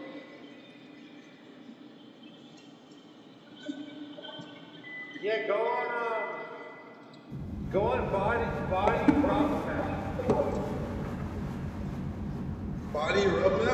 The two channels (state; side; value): identical; both; correlation 1.00